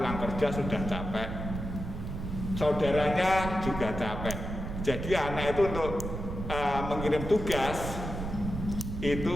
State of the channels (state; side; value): noise; right; rumble, 6 dB below the sound